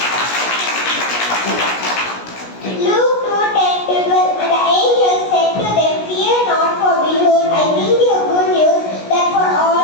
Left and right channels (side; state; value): right; late; 17 ms